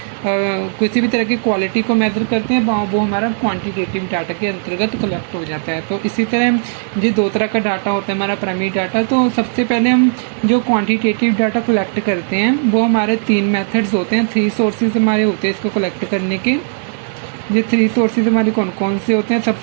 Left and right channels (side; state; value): left; silent; digital silence